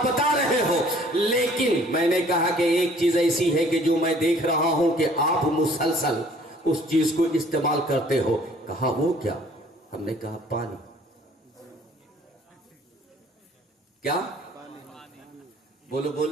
بتا رہے ہو، لیکن میں نے کہا کہ ایک چیز ایسی ہے کہ جو میں دیکھ رہا ہوں کہ آپ مسلسل اس چیز کو استعمال کرتے ہو۔ کہا وہ کیا؟ ہم نے کہا پانی۔ کیا؟ بولو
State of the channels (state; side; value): normal; both; correlation 0.56